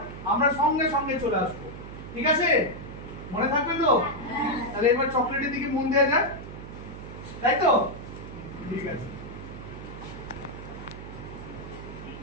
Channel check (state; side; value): noise; right; hum, 12 dB below the sound